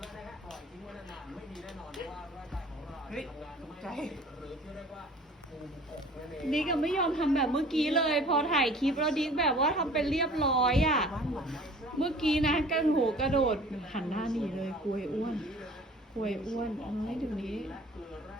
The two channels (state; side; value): normal; both; correlation 0.48